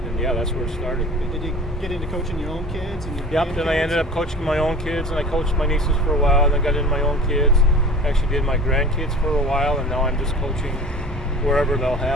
And yeah, that's where it started. Did you get into coaching your own kids? Then I ended up coaching my own kids, and I coached my nieces for a while, and then got into my own kids. Actually did my grandkids for a while, and now I'm just coaching wherever they'll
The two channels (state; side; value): normal; both; correlation 0.39